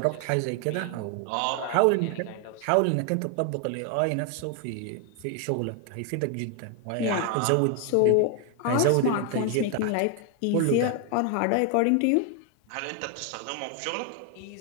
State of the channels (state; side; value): different; both; correlation 0.00